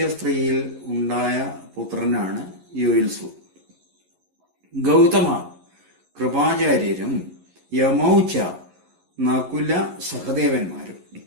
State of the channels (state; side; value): late; left; 11 ms